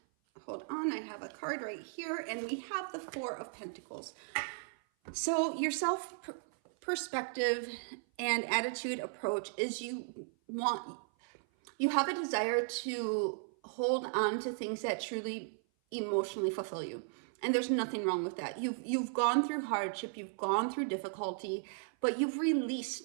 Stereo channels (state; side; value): silent; left; 54 dB below the other